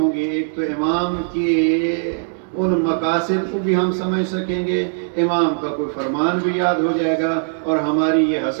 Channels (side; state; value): left; silent; digital silence